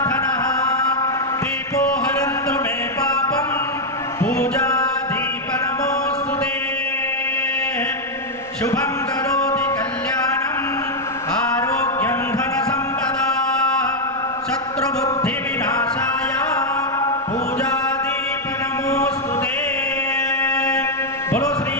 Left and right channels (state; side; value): normal; both; correlation 0.00